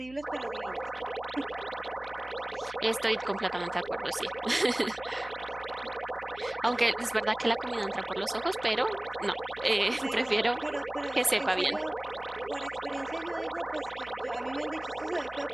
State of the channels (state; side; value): noise; right; hum, 20 dB below the sound